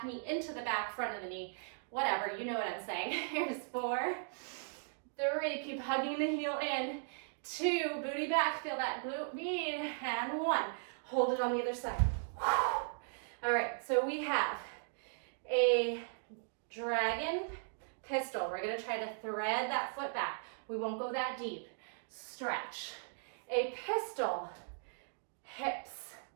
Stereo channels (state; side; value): silent; left; digital silence